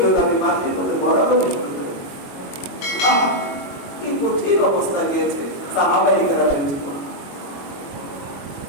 আমি মাটির মধ্যে গড়াগড়ি শুরু করি। কি কঠিন অবস্থা গিয়েছে সাহাবায়ে কেরামের জীবনে,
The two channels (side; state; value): right; late; 22 ms